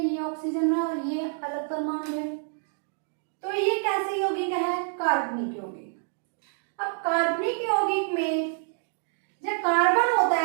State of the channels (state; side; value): silent; left; 60 dB below the other